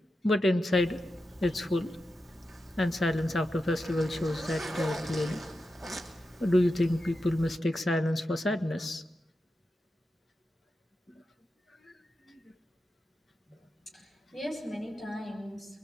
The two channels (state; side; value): normal; both; correlation 0.89